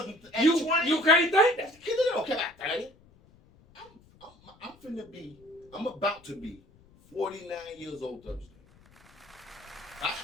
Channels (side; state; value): left; noise; rumble, 28 dB below the sound